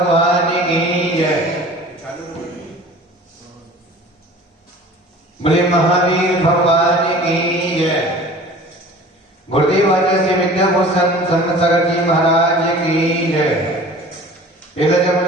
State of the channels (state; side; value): normal; both; correlation 0.44